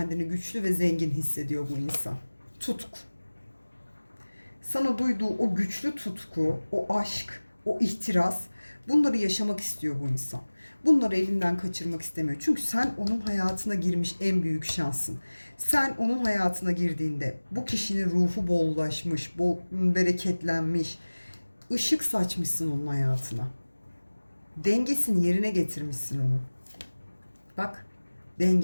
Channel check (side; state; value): both; inverted; correlation -1.00